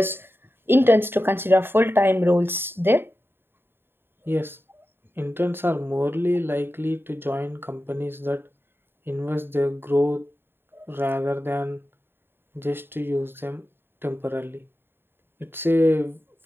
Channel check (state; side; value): late; left; 0.11 ms